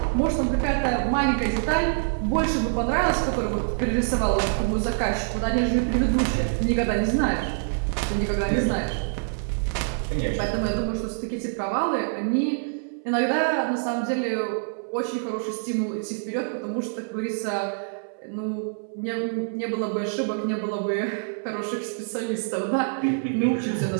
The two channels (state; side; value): silent; left; 61 dB below the other